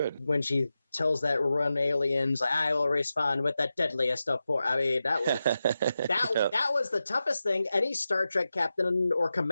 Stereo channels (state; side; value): inverted; both; correlation -0.91